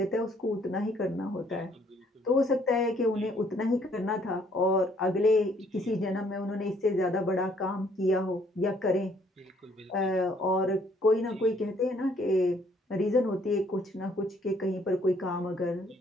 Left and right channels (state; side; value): normal; both; correlation 0.64